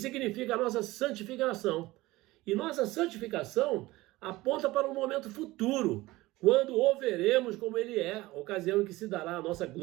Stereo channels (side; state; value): left; quieter; 19.2 dB